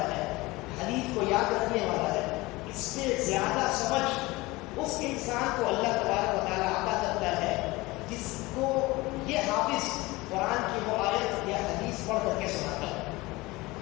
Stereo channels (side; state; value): right; quieter; 21.5 dB